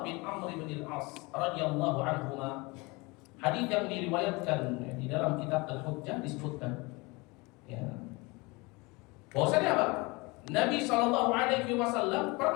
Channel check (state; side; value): quieter; right; 25.7 dB